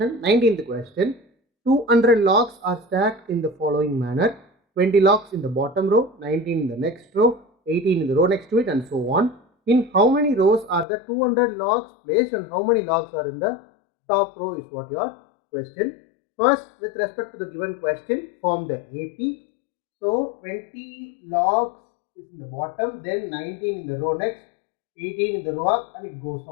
19th question. 200 logs are stacked in the following manner. 20 logs in the bottom row, 19 in the next row, 18 in the row next to it, and so on. In how many rows are the 200 logs placed and how many logs are in the top row is what your question. First, with respect to the given question, form the AP. So 20 logs is in the bottom, then 19 in the row next, 18 in the row up, and it goes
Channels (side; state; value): right; drops out; at 10.9 s